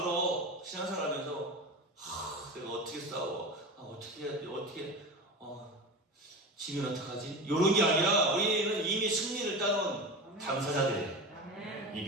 신앙생활 하면서 내가 어떻게 싸워? 어떻게 해야 돼? 지면 어떡하지? 이런 게 아니라 우리는 이미 승리를 따놓은 당사자들이에요. 이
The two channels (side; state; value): both; normal; correlation 0.27